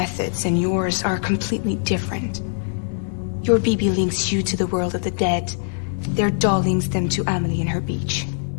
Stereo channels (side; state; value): right; silent; digital silence